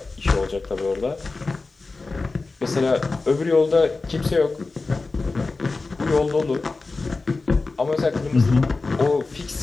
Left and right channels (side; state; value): right; quieter; 3.7 dB